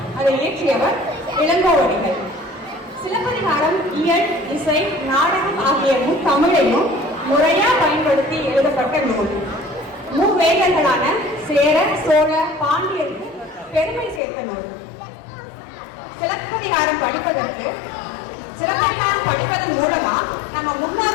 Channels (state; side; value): drops out; right; at 14.2 s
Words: அதை இயற்றியவர் இளங்கோவடிகள். சிலப்பதிகாரம் இயல், இசை, நாடகம் ஆகிய தமிழையும் முறையா பயன்படுத்தி எழுதப்பட்ட நூல். மூவேந்தர்களான சேர, சோழ, பாண்டியருக்கு பெருமை சேர்த்த நூல். சிலப்பதிகாரம் படிப்பதன் மூலமா நம்ம